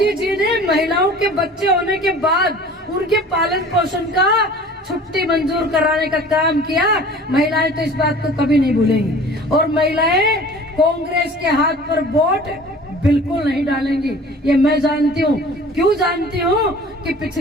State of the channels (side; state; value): both; normal; correlation 0.45